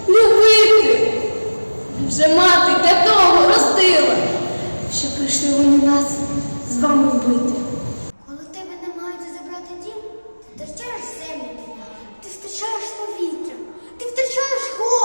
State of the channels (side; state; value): both; inverted; correlation -1.00